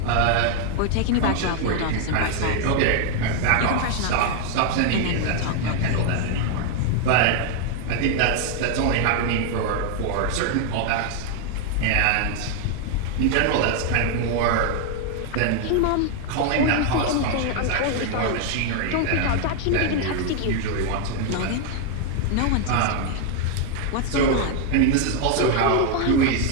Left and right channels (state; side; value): different; both; correlation 0.00